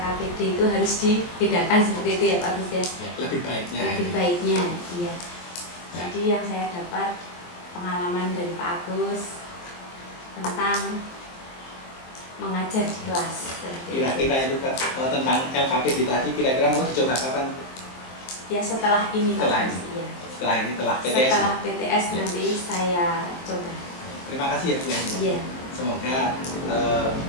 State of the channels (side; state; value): right; late; 23 ms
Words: itu harus dibedakan seperti itu ya Pak Agus ya. Lebih baiknya. Lebih baiknya, iya. Jadi yang saya dapat pengalaman dari Pak Agus tentang mengajar di kelas. Kira-kira itu tentang LKPD tadi kira-kira mau dicoba kapan? Ya setelah ini Pak Agus. Iya. Setelah ini, setelah PTS. Setelah PTS ya. Nanti saya coba. Terima kasih ya Bu. Iya. Semoga